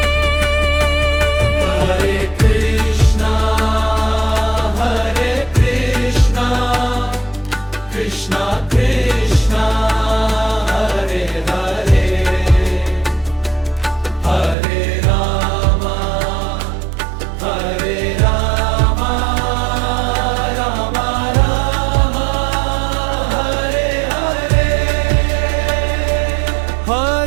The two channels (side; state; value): left; drops out; at 14.6 s